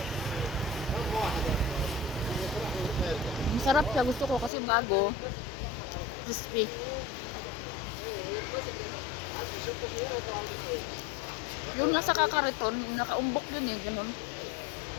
Masarap siya, gusto ko kasi bago, crispy. Yung nasa kakariton, nakaumbok yun ganun.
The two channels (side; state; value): right; drops out; at 4.5 s